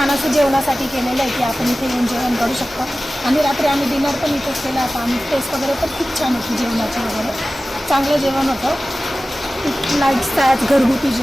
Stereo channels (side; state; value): both; normal; correlation 0.96